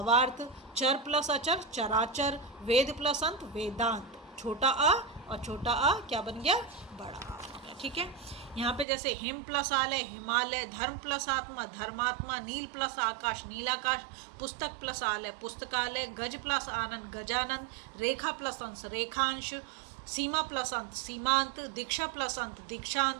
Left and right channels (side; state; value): left; drops out; at 8.8 s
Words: चर प्लस अचर, चराचर। वेद प्लस अंत, वेदांत। छोटा आ और छोटा आ क्या बन गया, बड़ा आ बन गया, ठीक है। यहाँ पे जैसे हिम प्लस आलय, हिमालय। धर्म प्लस आत्मा, धर्मात्मा। नील प्लस आकाश, नीलाकाश। पुस्तक प्लस आलय, पुस्तकालय। गज प्लस आनंद, गजानंद। रेखा प्लस अंश, रेखांश। सीमा प्लस अंत, सीमांत। दीक्षा प्लस अंत,